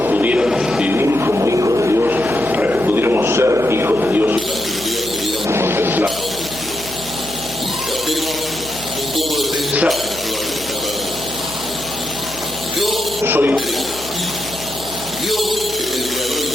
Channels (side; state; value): right; noise; hum, 16 dB below the sound